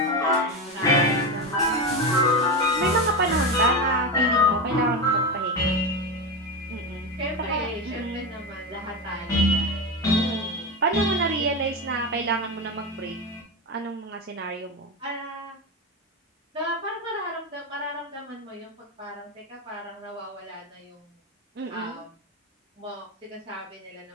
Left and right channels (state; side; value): normal; both; correlation 0.17